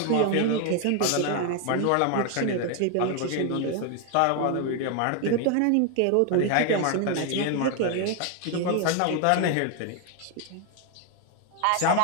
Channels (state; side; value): different; both; correlation 0.01